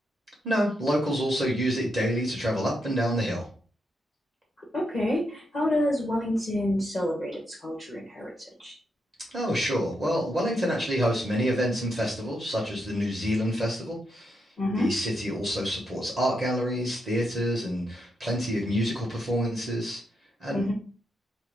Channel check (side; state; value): both; normal; correlation 0.82